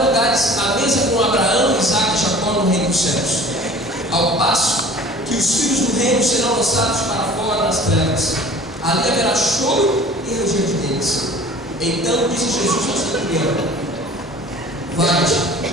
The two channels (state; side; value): normal; both; correlation 0.45